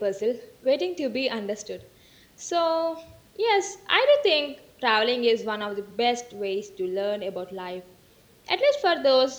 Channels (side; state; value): both; identical; correlation 1.00